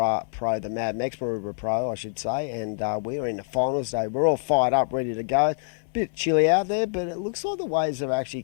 Pro, the Mad Mex Maroubra Pro, I should say, and we are in the finals day. We're all fired up, ready to go. Bit chilly out there, but it looks like the waves have actually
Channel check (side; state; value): right; silent; digital silence